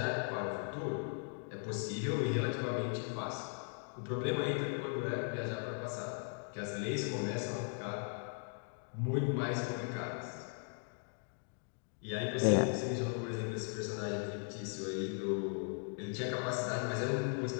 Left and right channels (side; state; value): right; silent; 52 dB below the other